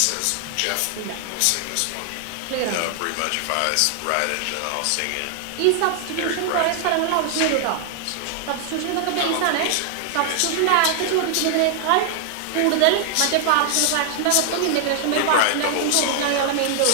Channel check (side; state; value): both; different; correlation 0.00